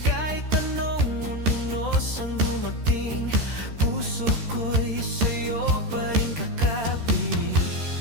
Kahit anong unos ang dumating, puso ko'y sa'yo pa rin kakapi.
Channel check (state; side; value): late; left; 13 ms